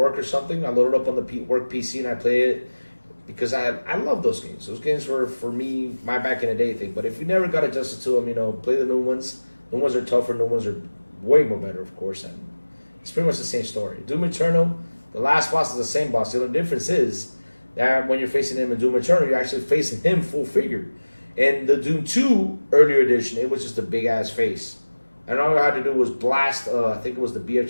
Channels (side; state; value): both; inverted; correlation -1.00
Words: or something. I load it up on the work PC and I play it because I love those games. Those games were, for me, my back in the day thing. But if you never got adjusted to them, you know, play the new ones. New ones are tougher. New ones are way more better, of course. And it's pretty much the same story. Doom Eternal, the last boss is the same boss. The only difference is that when you're facing him in Doom Eternal, you're actually facing him full figure. In the Doom 2 earlier edition, it was just a big-ass face. And all you had to do was blast, I think it was the